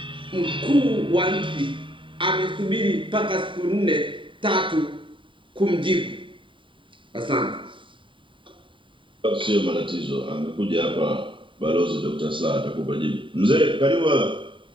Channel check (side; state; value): left; late; 0.24 ms